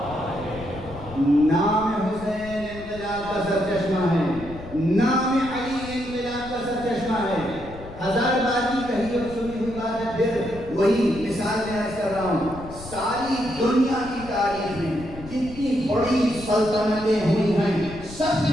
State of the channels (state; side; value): noise; left; rumble, 15 dB below the sound